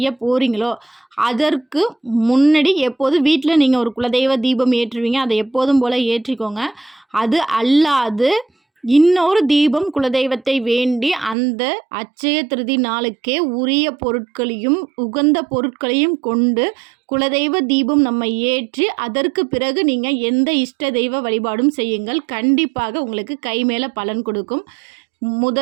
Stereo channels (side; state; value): left; drops out; at 11.4 s